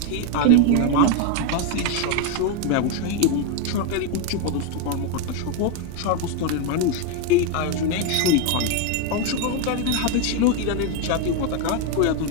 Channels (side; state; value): both; different; correlation 0.01